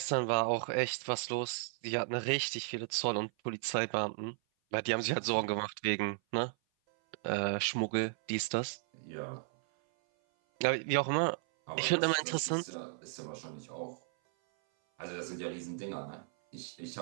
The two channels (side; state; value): left; silent; 55 dB below the other